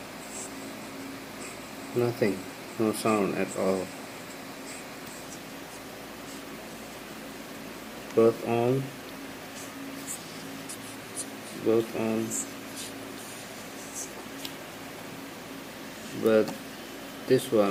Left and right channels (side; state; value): both; identical; correlation 1.00